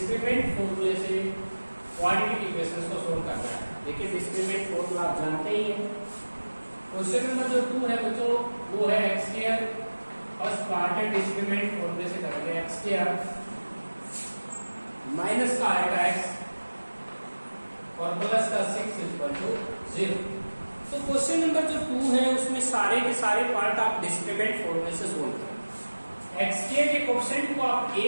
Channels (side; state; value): both; inverted; correlation -1.00